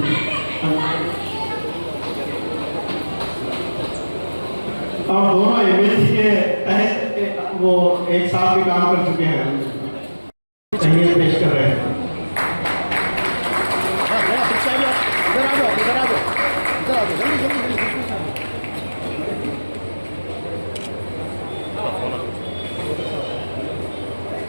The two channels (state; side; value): inverted; both; correlation -1.00